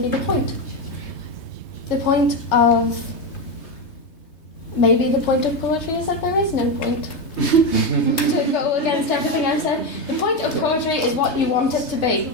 be the point. The point of poetry is that there is no point. To go against everything I've said, the point of poetry is what you want it to be.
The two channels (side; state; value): right; late; 3.3 ms